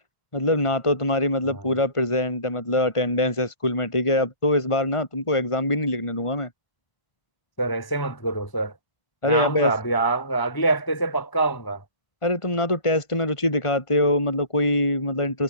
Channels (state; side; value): late; right; 1.0 ms